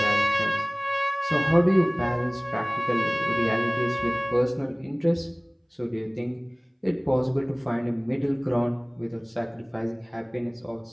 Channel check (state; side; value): identical; both; correlation 1.00